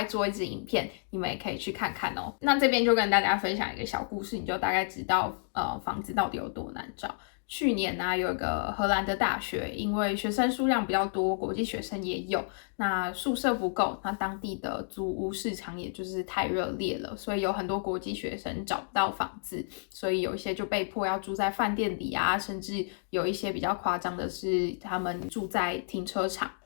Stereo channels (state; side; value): silent; right; digital silence